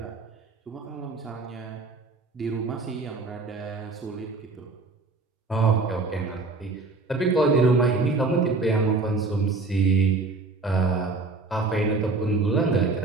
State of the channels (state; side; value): quieter; left; 3.7 dB